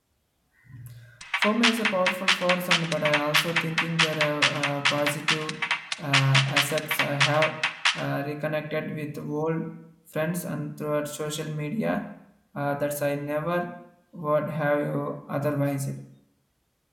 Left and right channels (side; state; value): both; identical; correlation 1.00